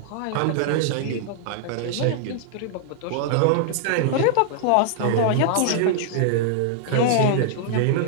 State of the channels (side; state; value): both; different; correlation -0.01